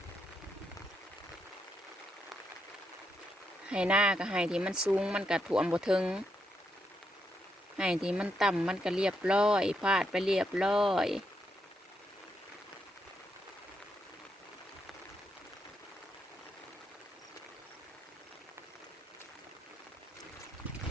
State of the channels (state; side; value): normal; both; correlation 0.80